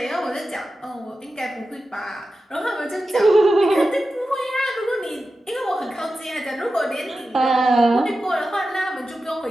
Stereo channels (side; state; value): both; normal; correlation 0.93